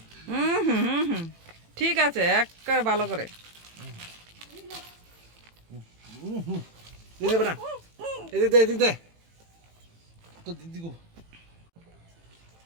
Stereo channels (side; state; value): left; late; 18 ms